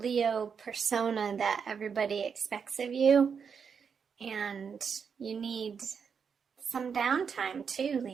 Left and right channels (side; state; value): left; quieter; 6.4 dB